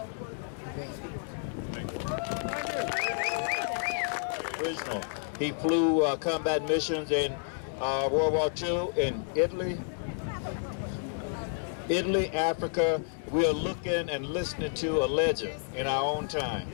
Original. He flew combat missions in World War II in Italy, Africa. We are looking and listening to a legend in our own time.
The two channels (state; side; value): silent; right; digital silence